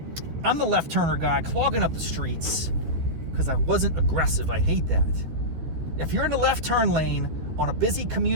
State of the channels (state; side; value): late; left; 13 ms